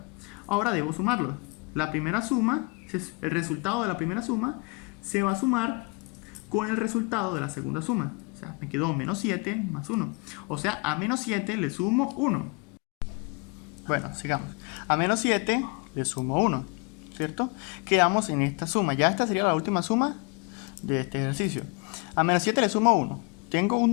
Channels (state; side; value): quieter; right; 31.0 dB